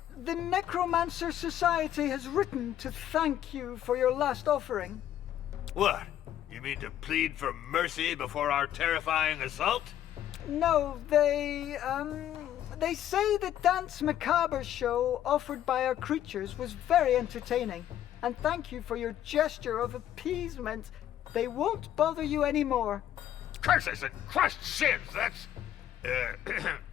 the Necromancer Society has written to thank you for your last offering. What? You mean to plead for mercy before our terrifying assault? No, they say the Dance Macabre show offered by our creatures was very entertaining, and thank you for your gesture of appeasement. They won't bother you anymore. Curses and crushed sins, that's...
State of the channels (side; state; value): right; quieter; 11.4 dB